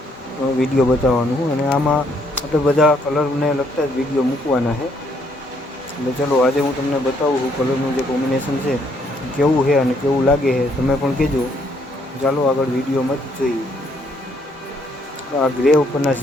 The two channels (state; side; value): normal; both; correlation 0.70